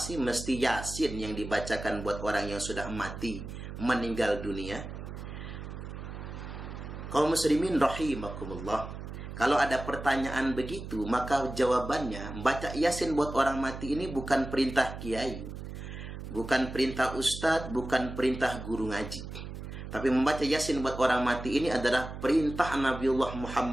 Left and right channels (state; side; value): noise; right; hum, 9 dB below the sound